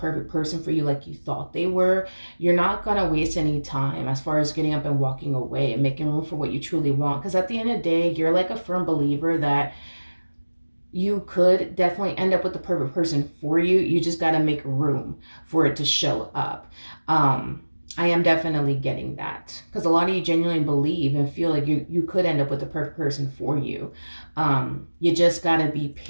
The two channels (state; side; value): inverted; both; correlation -1.00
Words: person for you like you thought they were, you're not going to waste any time as far as getting up and walking away and making room for what you truly want. Because at the end of the day, you're like a firm believer that you could definitely end up with the perfect person for you. You just got to make room for it to show up. I am definitely getting that because a lot of you genuinely believe and feel like you could end up with the perfect person for you. You just got to be